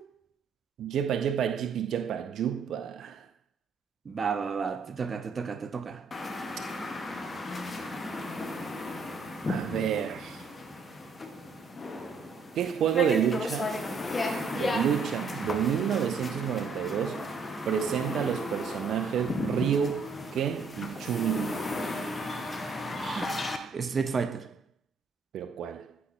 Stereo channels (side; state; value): left; quieter; 4.6 dB